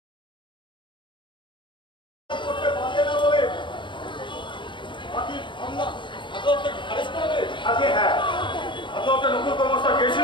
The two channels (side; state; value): right; late; 0.23 ms